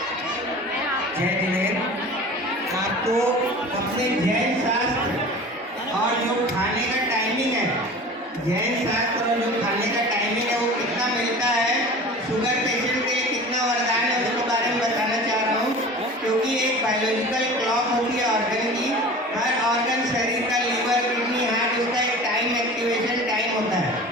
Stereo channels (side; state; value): both; normal; correlation 0.38